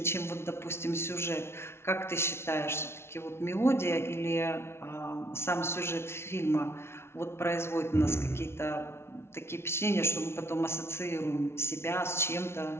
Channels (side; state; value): right; late; 0.12 ms